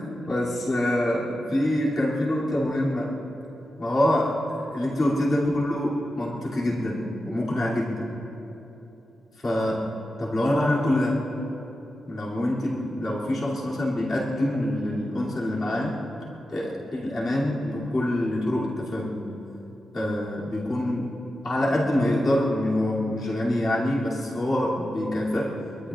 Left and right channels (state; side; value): normal; both; correlation 0.91